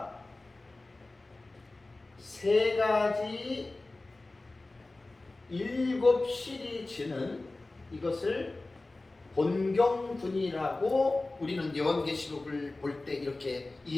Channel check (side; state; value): right; quieter; 3.1 dB